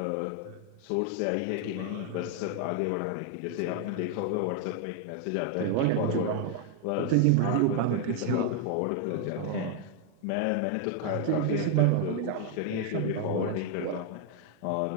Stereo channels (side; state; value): both; different; correlation 0.00